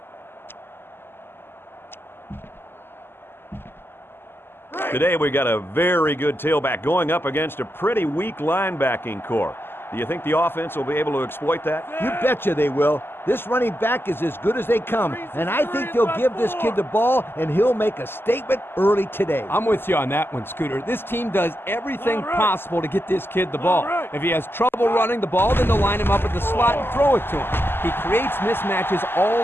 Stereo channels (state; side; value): late; right; 0.11 ms